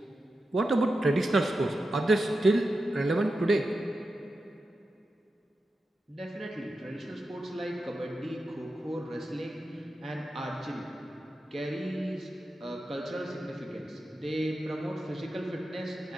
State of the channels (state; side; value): normal; both; correlation 0.90